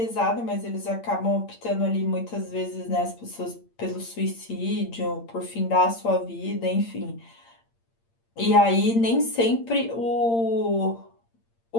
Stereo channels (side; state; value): right; late; 8.7 ms